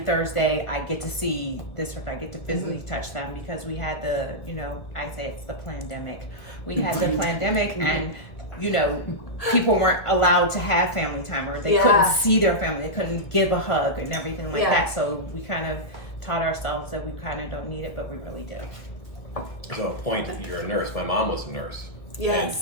I get to see this person, I get to physically touch them, because we had the, you know, I say it's the pandemic. We had the pandemic, and, you know, people weren't allowed to have family time, or they couldn't see their family, they couldn't give a hug and everything like that. So we kind of taught ourselves that we kind of don't need it, but we really do. So a point that you're a nurse. My mom was a nurse.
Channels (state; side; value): late; right; 1.7 ms